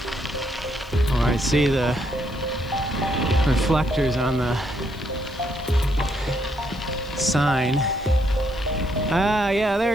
Oh, I see the reflectors on the sign. Ah, yeah,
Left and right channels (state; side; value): noise; left; hiss, 26 dB below the sound